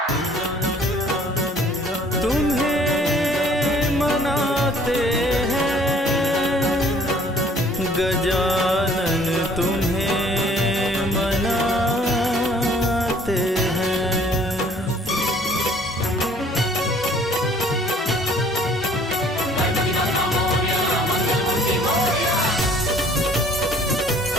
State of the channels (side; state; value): both; normal; correlation 0.56